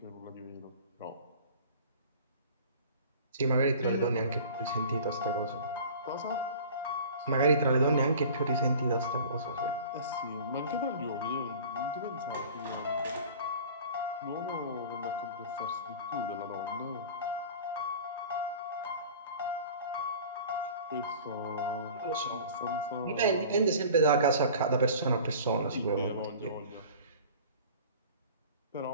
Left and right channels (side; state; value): both; inverted; correlation -0.42